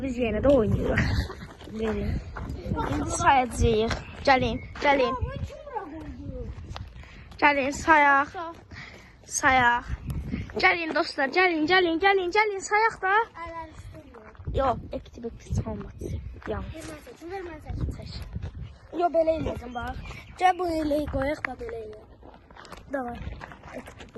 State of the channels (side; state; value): both; identical; correlation 1.00